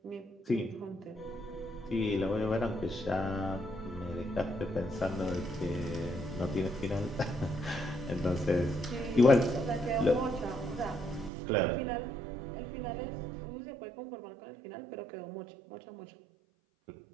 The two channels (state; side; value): drops out; left; at 11.3 s